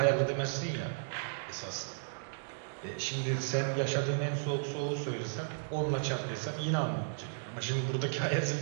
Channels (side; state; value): left; silent; digital silence